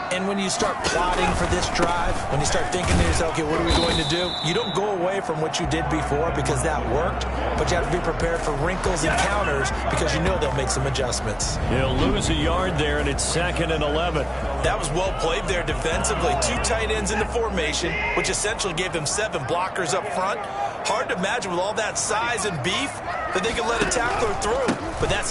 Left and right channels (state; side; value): identical; both; correlation 1.00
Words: And when you start plotting for this drive, when you start thinking to yourself, okay, what are we going to do? You don't go away from what you did before because that worked, but you have to be prepared for wrinkles and counters because you know they'll make some adjustments. He'll lose a yard there, and it's 2nd and 11. That was well played there defensively. 2 tight ends in the formation, which essentially gave them 7 blockers up front. Hard to imagine with all that size and beef that they could let a tackler through. But that's